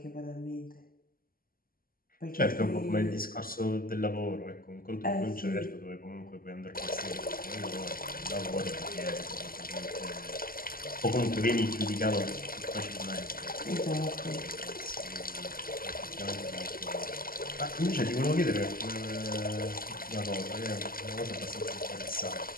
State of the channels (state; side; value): late; right; 0.42 ms